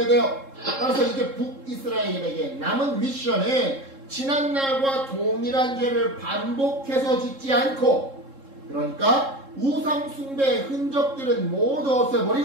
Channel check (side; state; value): left; late; 3.7 ms